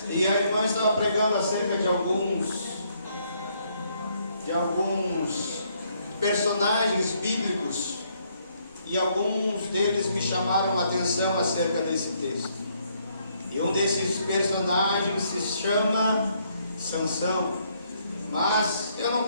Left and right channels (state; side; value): inverted; both; correlation -0.70